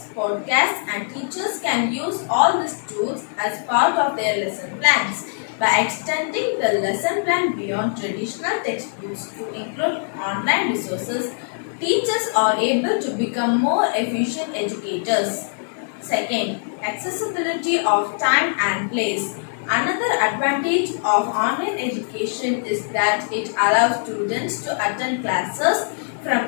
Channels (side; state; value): right; silent; 64 dB below the other